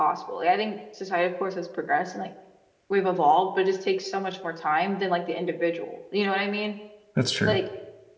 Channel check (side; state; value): both; identical; correlation 1.00